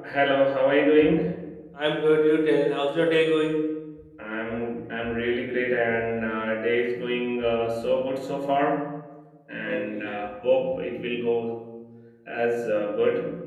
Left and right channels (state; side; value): identical; both; correlation 1.00